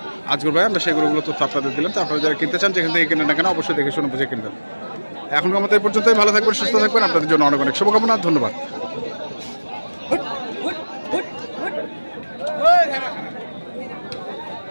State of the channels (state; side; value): inverted; both; correlation -1.00